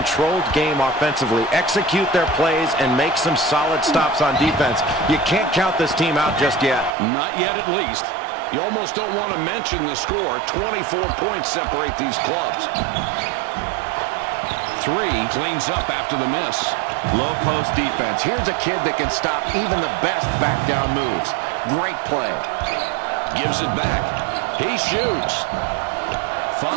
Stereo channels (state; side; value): drops out; left; at 6.9 s